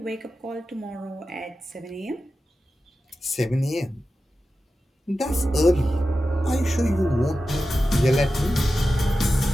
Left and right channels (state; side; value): normal; both; correlation 0.92